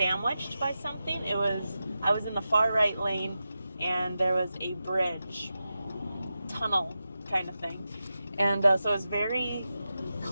by something. I was in the far right lane and there was a bridge, tunnel kind of thing, and so it was very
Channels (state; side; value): inverted; both; correlation -0.91